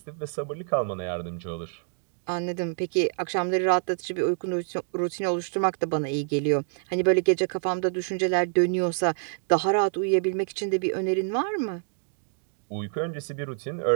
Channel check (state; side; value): silent; left; digital silence